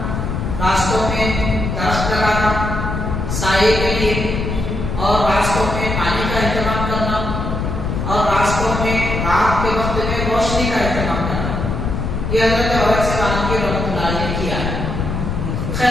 راستوں میں درخت لگانا سائے کے لیے، اور راستوں میں پانی کا اہتمام کرنا، اور راستوں میں رات کے وقت میں روشنی کا اہتمام کرنا، یہ حضرت اورنگزیب عالمگیر رحمۃ اللہ علیہ نے کیا ہے۔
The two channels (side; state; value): left; noise; rumble, 2 dB below the sound